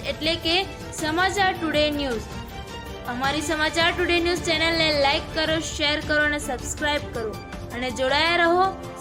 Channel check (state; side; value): identical; both; correlation 1.00